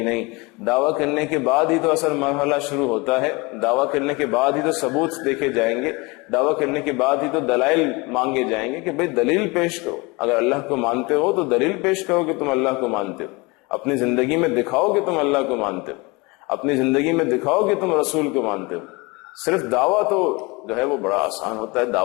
دعویٰ کرنے کے بعد ہی تو اصل مرحلہ شروع ہوتا ہے، دعویٰ کرنے کے بعد ہی تو ثبوت دیکھے جائیں گے، دعویٰ کرنے کے بعد ہی تو دلائل مانگے جائیں گے کہ بھئی دلیل پیش کرو، اگر اللہ کو مانتے ہو تو دلیل پیش کرو کہ تم اللہ کو مانتے ہو، اپنی زندگی میں دکھاؤ کہ تم اللہ کو مانتے ہو، اپنی زندگی میں دکھاؤ کہ تم رسول کو مانتے ہو۔ صرف دعویٰ تو جو ہے وہ بڑا آسان ہوتا ہے،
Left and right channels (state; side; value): quieter; right; 26.0 dB